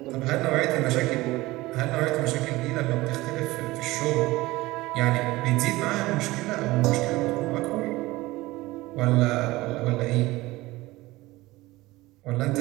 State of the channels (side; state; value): left; quieter; 19.4 dB